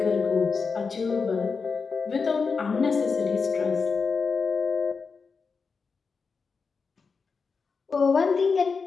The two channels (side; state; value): right; quieter; 5.0 dB